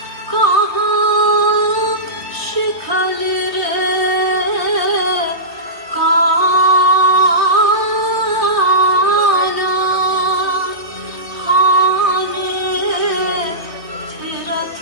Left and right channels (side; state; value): right; late; 3.2 ms